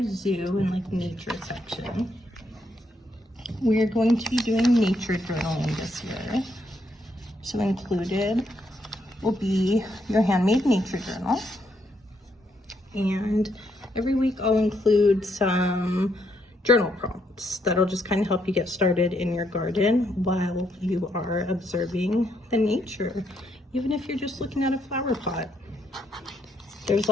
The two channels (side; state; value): both; normal; correlation 0.75